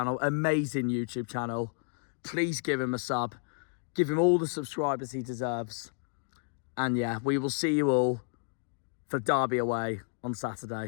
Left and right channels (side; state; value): right; silent; 57 dB below the other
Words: Amazing YouTube channel. Please give him a sub. Give him all the subscribers he deserves. And, yeah, we will see you all for Derby away on